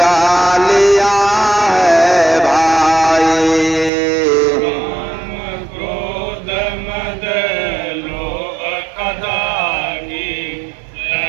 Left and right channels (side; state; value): left; drops out; at 3.9 s